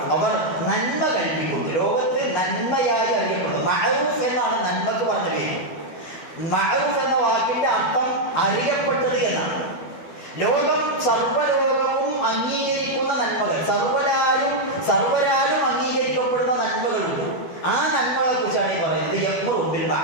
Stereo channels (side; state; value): right; late; 12 ms